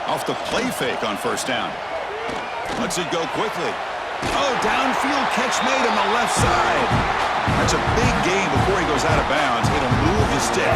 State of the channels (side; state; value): both; identical; correlation 1.00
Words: Off the play fake on first down. Lets it go quickly. Oh, downfield catch made on the left side. That's a big gain before he goes out of bounds. It'll move the